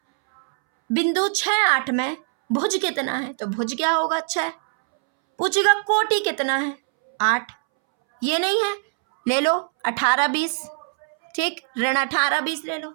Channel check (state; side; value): silent; left; 64 dB below the other